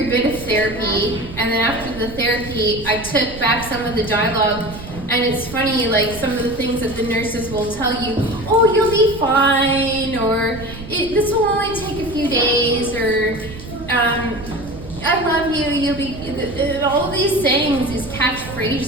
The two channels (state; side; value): noise; right; rumble, 13 dB below the sound